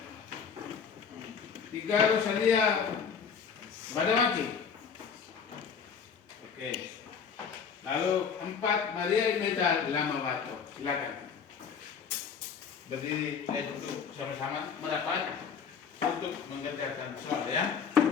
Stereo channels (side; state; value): right; quieter; 6.5 dB